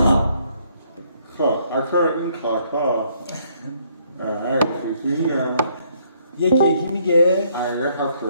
خب اکثر این کارها یکی میگه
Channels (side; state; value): both; inverted; correlation -0.68